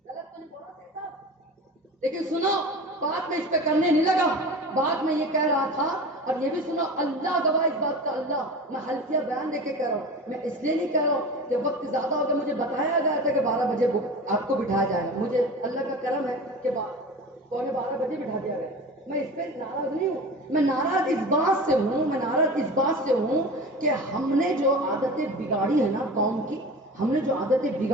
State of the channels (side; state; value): both; normal; correlation 0.34